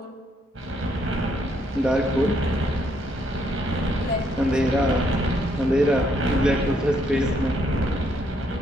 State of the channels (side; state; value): both; normal; correlation 0.72